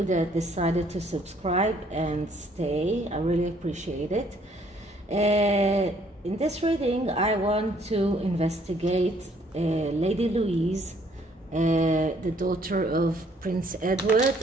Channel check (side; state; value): both; normal; correlation 0.64